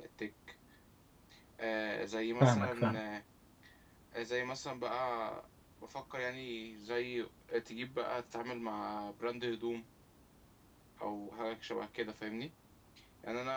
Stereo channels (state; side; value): identical; both; correlation 1.00